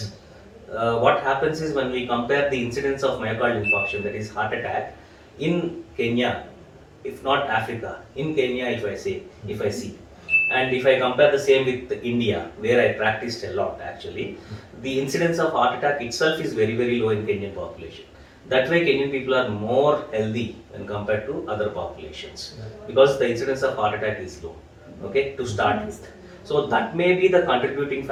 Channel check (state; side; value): identical; both; correlation 1.00